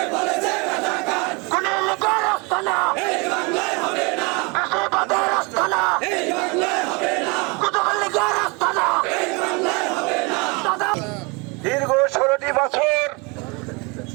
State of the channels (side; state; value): left; quieter; 29.1 dB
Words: কোন লীগের আস্তানা ফেসিবাদের আস্তানা কুতুব লীগের আস্তানা দীর্ঘ 16টি বছর